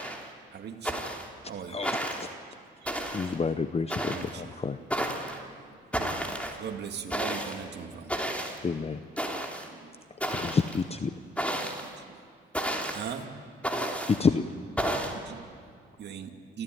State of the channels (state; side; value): normal; both; correlation 0.65